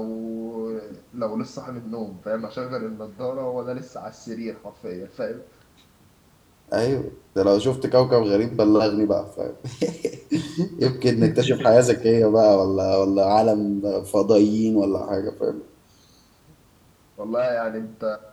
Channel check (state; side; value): identical; both; correlation 1.00